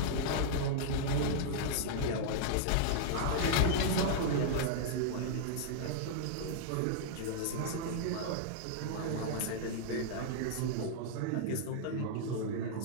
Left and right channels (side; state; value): both; different; correlation -0.01